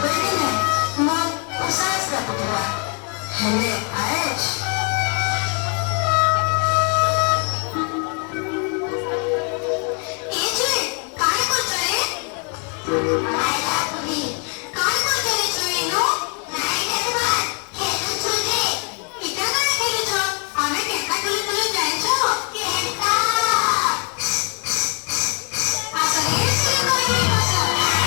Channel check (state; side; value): quieter; right; 35.9 dB